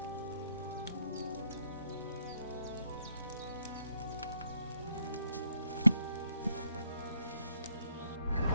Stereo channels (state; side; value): inverted; both; correlation -0.73